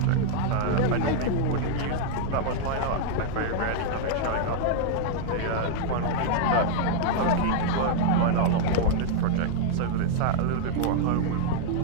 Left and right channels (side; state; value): both; different; correlation -0.01